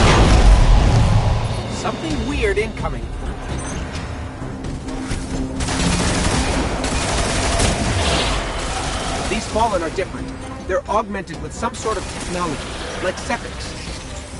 Something weird incoming. These Fallen are different. They're augmented with some sort of technology, like Sepix.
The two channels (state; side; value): identical; both; correlation 1.00